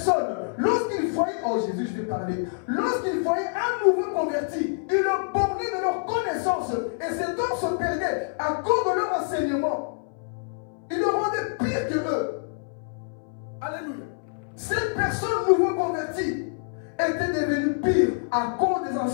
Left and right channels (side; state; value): right; silent; 61 dB below the other